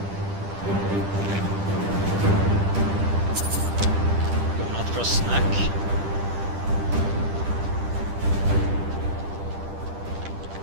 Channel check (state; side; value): late; left; 10 ms